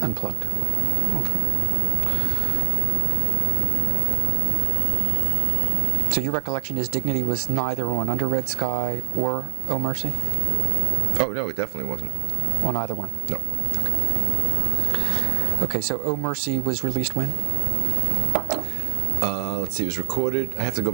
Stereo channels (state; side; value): silent; left; digital silence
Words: Okay. So your recollection is Dignity was neither on Under Red Sky or Oh Mercy? Oh, no, it definitely wasn't. On either one? No. Okay, so Oh Mercy was released when? Let's see, it was recorded. I have to go